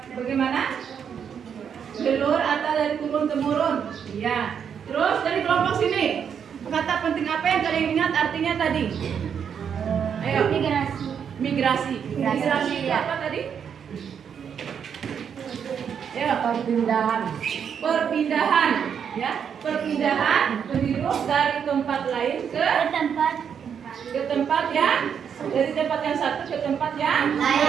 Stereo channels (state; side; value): quieter; left; 7.6 dB